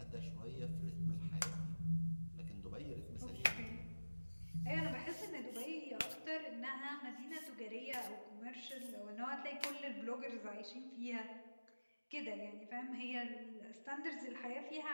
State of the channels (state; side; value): inverted; both; correlation -1.00